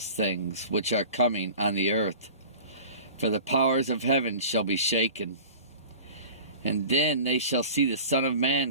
things which are coming on the earth. For the powers of heaven shall be shaken. And then they shall see the Son of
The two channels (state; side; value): inverted; both; correlation -0.40